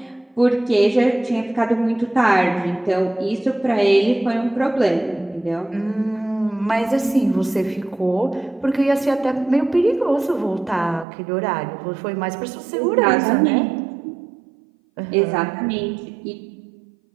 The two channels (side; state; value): left; drops out; at 11.1 s